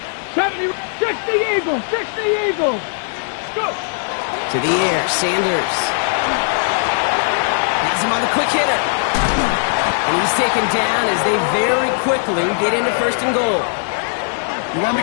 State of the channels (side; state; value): right; silent; digital silence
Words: 70, 60 Eagles. Go. To the air, Sanders. Has him on the quick hitter. And he's taken down as they very quickly get into 1st and goal. You want